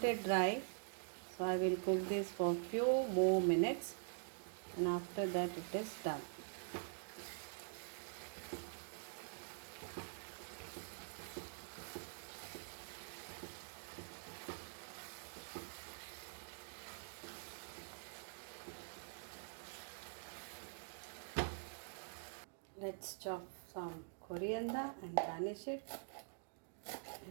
it dry, so I will cook this for few more minutes, and after that it is done. Let's chop some coriander and garnish it.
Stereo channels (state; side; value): silent; left; digital silence